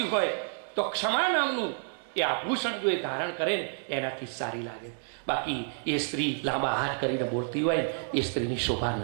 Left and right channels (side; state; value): left; silent; 58 dB below the other